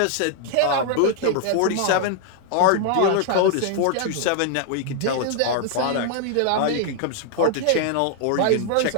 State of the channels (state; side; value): different; both; correlation 0.00